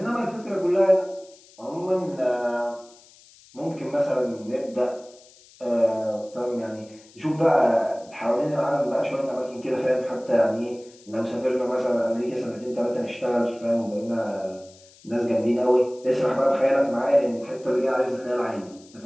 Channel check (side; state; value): left; noise; hiss, 25 dB below the sound